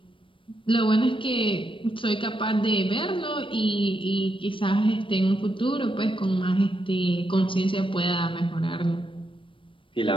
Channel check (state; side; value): late; right; 0.25 ms